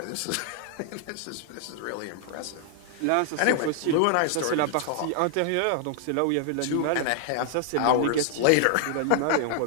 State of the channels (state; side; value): different; both; correlation 0.00